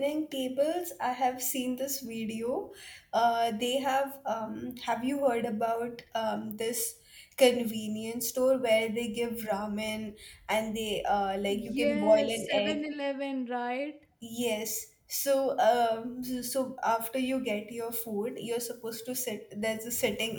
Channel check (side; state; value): both; identical; correlation 1.00